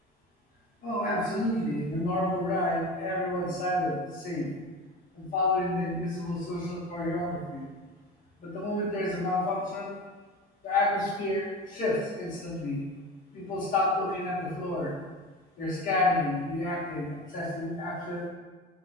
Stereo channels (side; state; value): both; normal; correlation 0.32